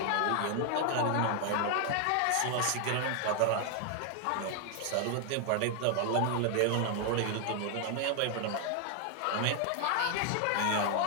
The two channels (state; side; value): different; both; correlation 0.00